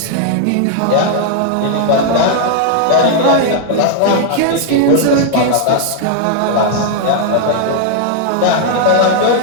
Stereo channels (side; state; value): both; different; correlation 0.00